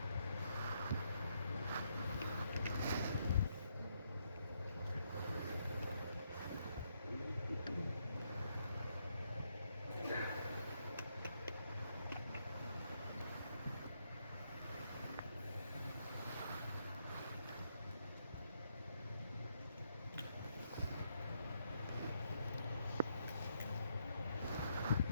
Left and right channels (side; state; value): both; inverted; correlation -0.76